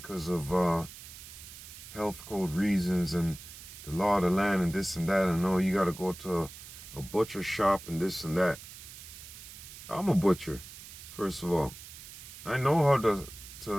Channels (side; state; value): right; noise; hiss, 15 dB below the sound